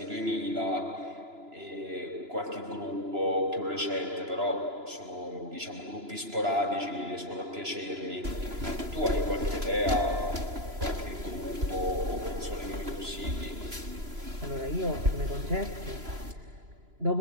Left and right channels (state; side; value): late; left; 2.9 ms